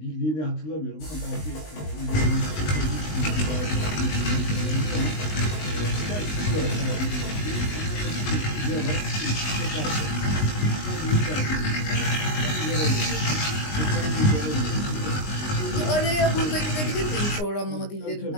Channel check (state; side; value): late; right; 20 ms